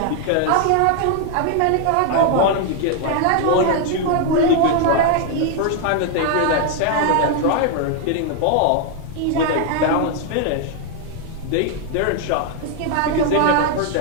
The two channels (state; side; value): different; both; correlation 0.00